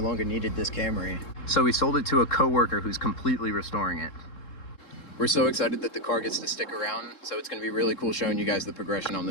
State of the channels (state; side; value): late; right; 3.7 ms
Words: longer needed this Camry. So we sold it to a coworker who's completely restoring it. We're so excited that the car gets to stick around, so it's gonna be really cool showing you guys the progression on